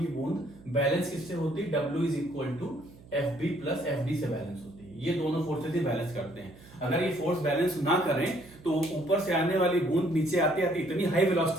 बूंद बैलेंस किससे होती है? W is equal to F B plus F D से बैलेंस होती है। ये दोनों फोर्सेस ही बैलेंस करते हैं। अगर ये फोर्स बैलेंस ना करें तो ऊपर से आने वाली बूंद नीचे आते आते इतनी हाई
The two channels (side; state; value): right; noise; hum, 22 dB below the sound